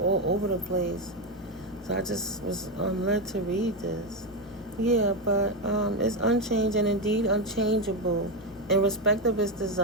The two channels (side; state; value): both; normal; correlation 0.09